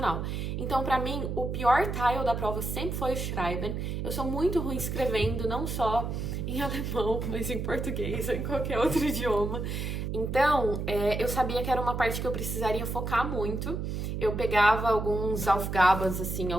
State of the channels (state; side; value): noise; right; hum, 3 dB below the sound